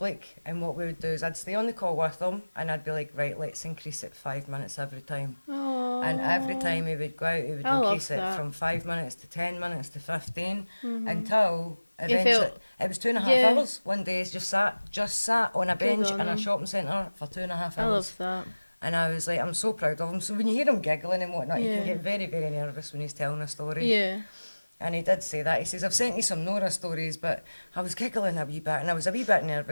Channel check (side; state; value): both; inverted; correlation -1.00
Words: And what we would do is I'd stay on the call with him and I'd be like, right, let's increase it 5 minutes every time. Oh. And every time he would go out, he would I love increase it that. from 5 minutes to 10 minutes to 15 until eventually, felt- it was 2.5 Yeah. hours. One day he just sat on a bench on in a him. shopping centre for 2.5 I hours. love that. And I was like, I'm so proud of him. So when you hear him giggling and whatnot, you Yeah. can get very, very nervous when he's telling a story. Yeah. And he did say that. He says, I've sent you some Nora stories, but I was giggling a wee bit and I was a wee bit